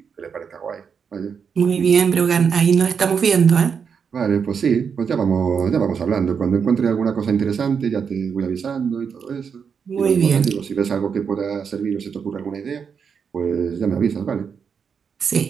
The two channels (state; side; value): quieter; left; 6.5 dB